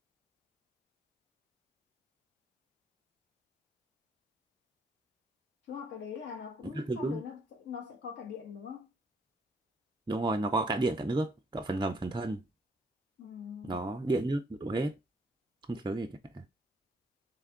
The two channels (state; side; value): normal; both; correlation 0.68